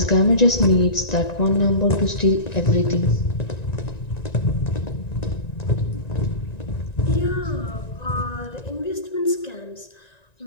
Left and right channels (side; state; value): right; late; 1.9 ms